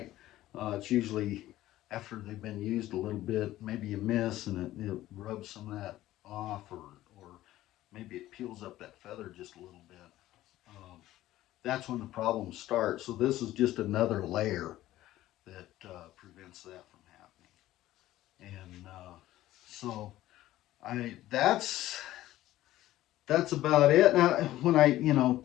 It's usually after they've been used a little bit, maybe you miss and it rubs some of that off, or maybe it peels up that feather just a little bit. That's when the problems start. So this is just another layer that prevents that from happening. And so that's about it. Now, when I, you know,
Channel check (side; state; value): right; quieter; 15.0 dB